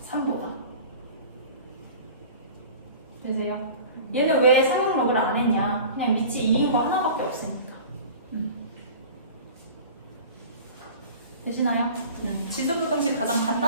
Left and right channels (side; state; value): both; inverted; correlation -0.41